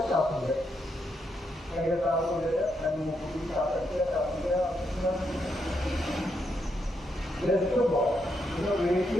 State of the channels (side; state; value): both; normal; correlation 0.80